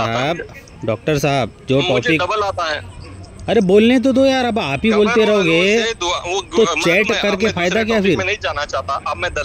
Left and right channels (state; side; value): identical; both; correlation 1.00